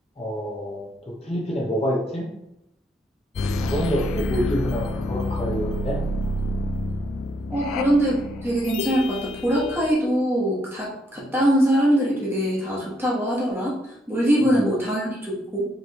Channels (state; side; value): normal; both; correlation 0.74